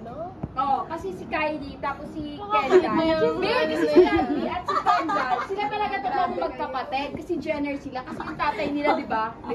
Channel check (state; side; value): identical; both; correlation 1.00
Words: Oo, kasi si Kylie, tapos si Bakit Kendall. mo yung- Hindi, kasi si Kylie at si Kendall, sila talaga tatlong magkapatid. Kasi Jenner sila. Kasi yung tatay nila, di ba? May